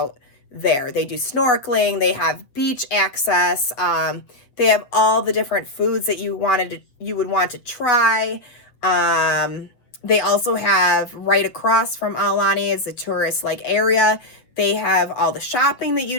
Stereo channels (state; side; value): late; right; 8.0 ms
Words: there. They do snorkeling, they have beach access, they have all the different foods that you would want to try. They also have, right across from Aulani is a tourist area. They have all the shopping that